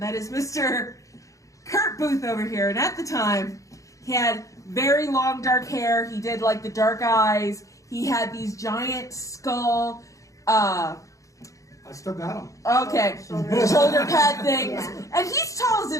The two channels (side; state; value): right; late; 0.16 ms